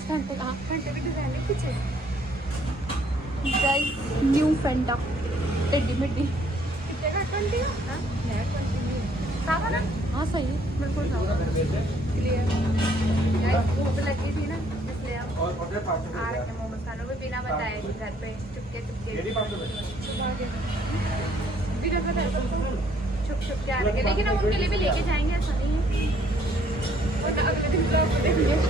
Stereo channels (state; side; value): normal; both; correlation 0.64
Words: घंटे का घंटे भी डिजाइन पीछे गाइस न्यू फैंटा टेडी मेडी हाँ सही है बिल्कुल भूख लगी थी ना इसलिए हम आ रखे मोमोज खाने को बिना बताए थे घर पे चुपके छुप के आ रखे, लेकिन हम उनके लिए भी लेके जाएंगे, ऐसा नहीं है। और अगले दिन ब्लॉग में देखेंगे।